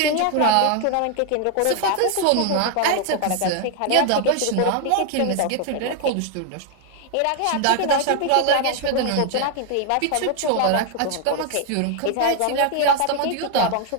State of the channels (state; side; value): different; both; correlation 0.00